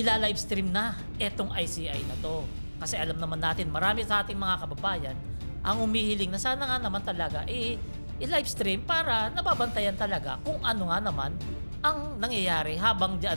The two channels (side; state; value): both; inverted; correlation -1.00